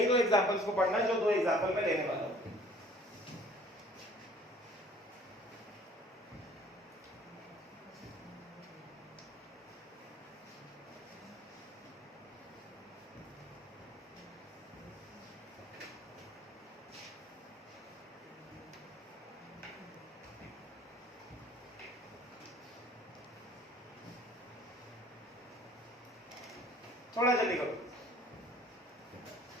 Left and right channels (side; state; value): both; normal; correlation 0.53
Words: दो एग्जांपल्स को पढ़ना है जो दो एग्जांपल मैं लेने वाला हूं. थोड़ा जल्दी करो.